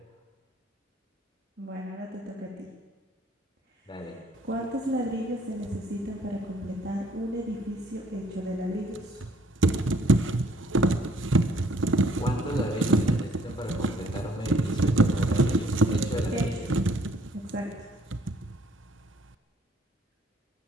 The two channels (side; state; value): both; normal; correlation 0.62